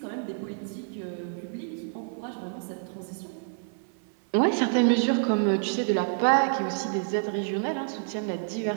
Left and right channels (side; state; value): left; silent; 59 dB below the other